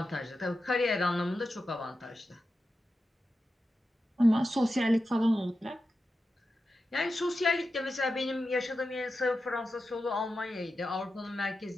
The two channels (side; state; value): both; normal; correlation 0.91